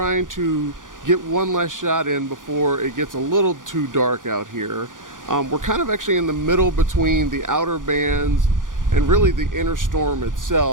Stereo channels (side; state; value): left; late; 0.88 ms